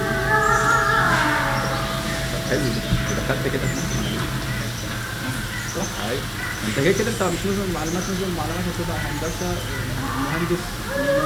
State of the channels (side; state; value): both; identical; correlation 1.00